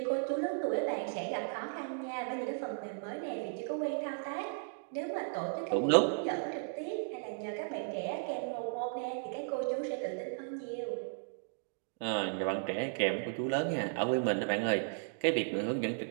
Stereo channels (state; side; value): silent; left; digital silence